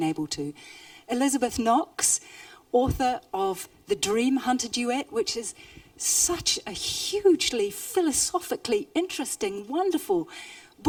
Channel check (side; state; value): both; identical; correlation 1.00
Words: able to. Elizabeth Knox, author of The Dream Hunter Duet, which is such a hugely philosophically interesting, wonderful